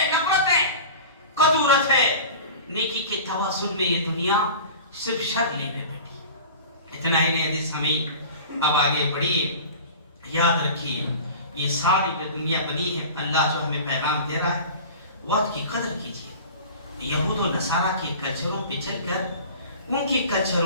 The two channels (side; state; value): both; inverted; correlation -0.37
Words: نفرت ہے, قدورت ہے. نیکی کے توازن میں یہ دنیا صرف شر لے میں بیٹھی. اتنا ہی نہیں حدیث سمعین, اب آگے بڑھیے. یاد رکھیے یہ ساری جو دنیا بنی ہے اللہ جو ہمیں پیغام دے رہا ہے وقت کی قدر کیجیے. یہود و نصارہ کے کلچروں پہ چل کر ان کے